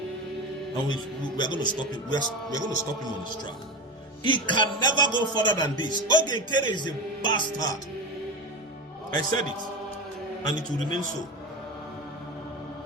we are going to stop him. We are going to stop him on his track. He can never go further than this. Ogenkere is a bastard. I said it, and it will remain so.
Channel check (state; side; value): normal; both; correlation 0.23